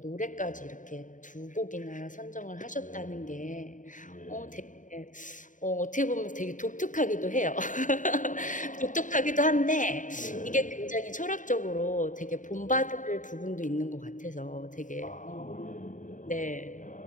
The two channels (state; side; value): late; right; 0.37 ms